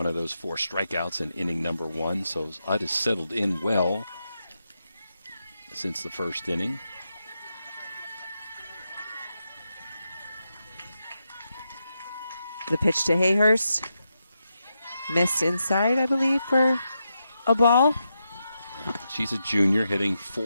of those 4 strikeouts in inning number 1, so Ut has settled in well since the first inning. The pitch to Hayhurst. Missed inside, I believe, for a ball. She's a junior hitting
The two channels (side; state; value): both; inverted; correlation -0.86